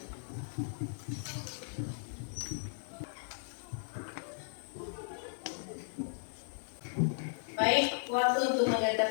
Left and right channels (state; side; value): silent; right; digital silence